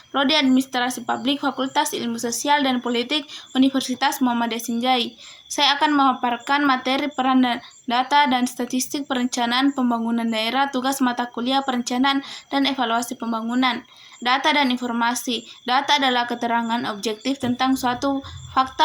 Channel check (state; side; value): identical; both; correlation 1.00